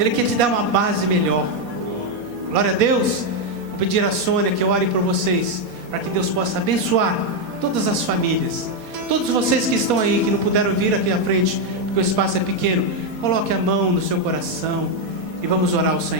quer te dar uma base melhor. Glória a Deus. Vou pedir a Sônia que ore por vocês, para que Deus possa abençoar todas as famílias. Todos vocês que estão aí, que não puderam vir aqui à frente, porque o espaço é pequeno, coloque a mão no seu coração e vamos orar ao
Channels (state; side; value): late; left; 4.2 ms